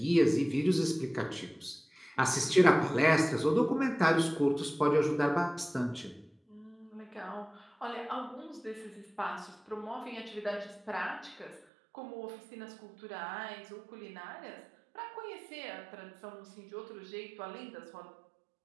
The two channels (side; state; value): left; drops out; at 11.7 s